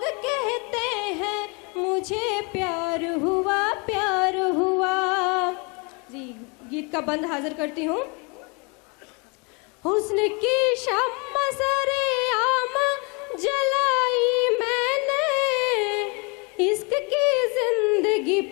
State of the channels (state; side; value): quieter; right; 31.5 dB